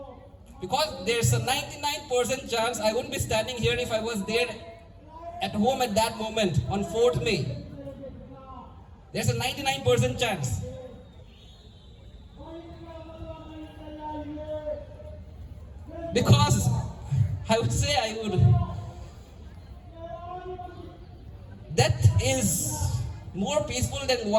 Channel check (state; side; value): identical; both; correlation 1.00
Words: Because there's a 99% chance I wouldn't be standing here if I was there at home at that moment on 4th May. There's a 99% chance. Because I would say death is more peaceful than